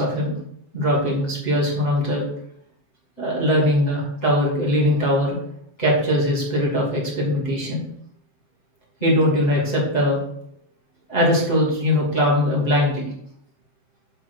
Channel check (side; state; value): right; late; 7.7 ms